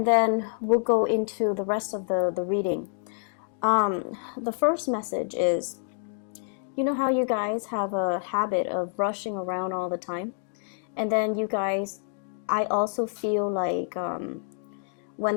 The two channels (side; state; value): right; silent; digital silence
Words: then we'll go into the rest of the reading. The first message is, you know how you guys have a habit of rushing around all the time? And then you guys, I also feel like when